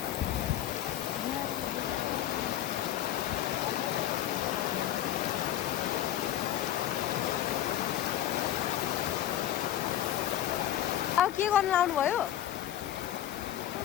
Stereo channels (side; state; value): right; quieter; 12.3 dB